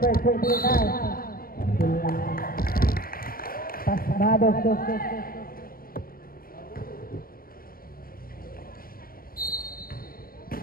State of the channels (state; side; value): late; right; 0.42 ms